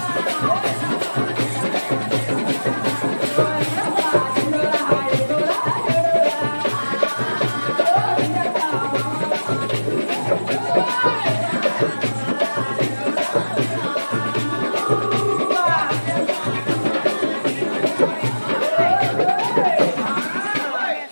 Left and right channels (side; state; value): both; inverted; correlation -1.00